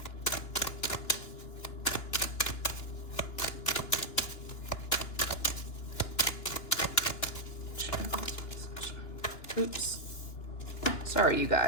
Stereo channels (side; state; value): right; late; 2.9 ms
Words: Oops. Sorry, you